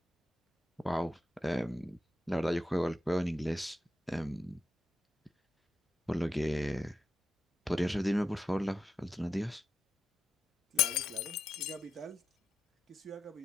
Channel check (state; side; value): normal; both; correlation 0.86